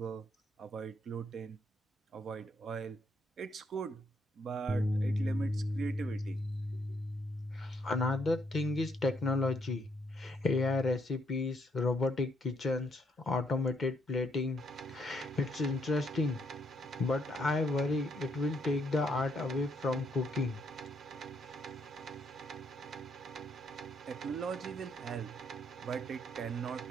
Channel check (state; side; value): normal; both; correlation 0.73